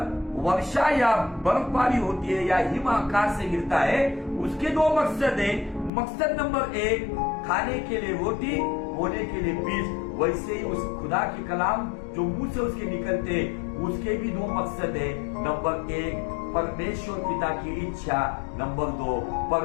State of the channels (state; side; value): drops out; right; at 5.9 s